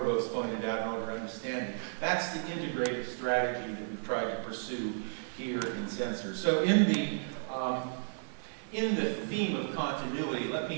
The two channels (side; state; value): left; silent; 56 dB below the other